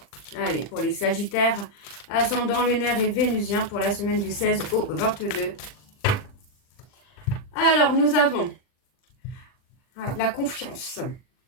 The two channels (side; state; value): right; late; 40 ms